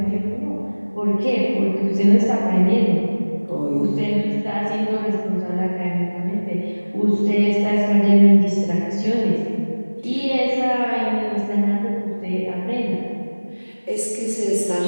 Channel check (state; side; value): inverted; both; correlation -1.00